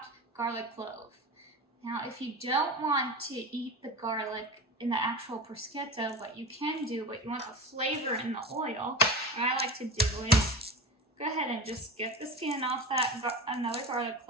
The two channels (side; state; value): both; normal; correlation 0.29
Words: garlic clove. Now, if you don't want to eat the garlic in the actual bruschetta, what you can do, but you want the flavor in the oil, what I like to do is go ahead and just get the skin off that another garlic